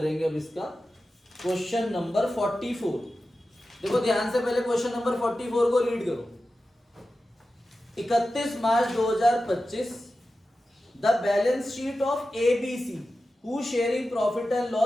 अब इसका, क्वेश्चन नंबर 44। देखो ध्यान से पहले क्वेश्चन नंबर 44 को रीड करो। 31 March 2025 the balance sheet of ABC who sharing profit and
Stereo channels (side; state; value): both; normal; correlation 0.93